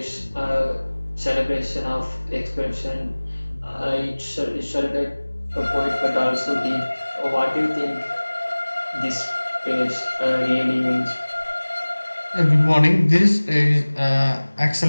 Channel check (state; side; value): inverted; both; correlation -1.00